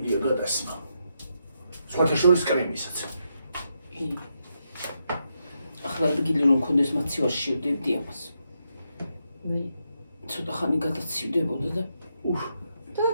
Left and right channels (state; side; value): inverted; both; correlation -0.82